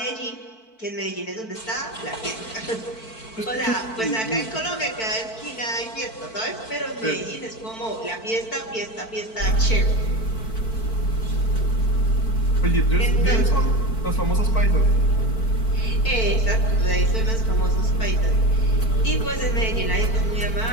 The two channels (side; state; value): right; late; 4.5 ms